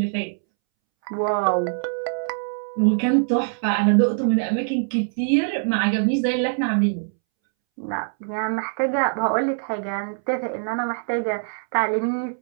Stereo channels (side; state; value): left; silent; 63 dB below the other